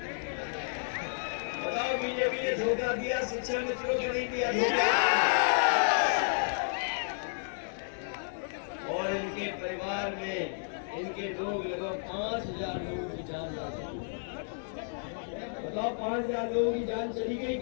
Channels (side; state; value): right; silent; digital silence